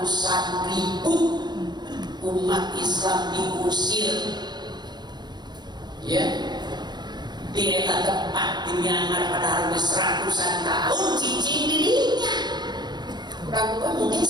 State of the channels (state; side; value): late; left; 0.21 ms